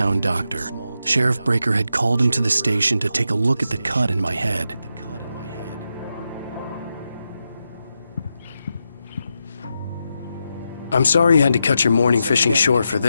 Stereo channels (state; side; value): inverted; both; correlation -0.86